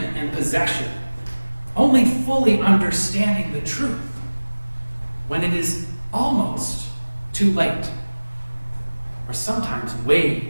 and possession, only fully understanding the truth when it is almost too late, or sometimes way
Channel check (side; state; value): both; inverted; correlation -1.00